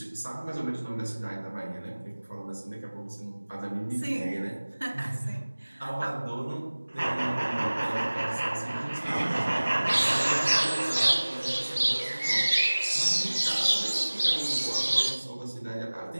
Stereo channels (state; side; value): inverted; both; correlation -1.00